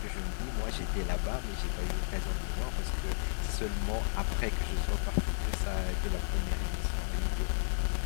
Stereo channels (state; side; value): silent; right; 56 dB below the other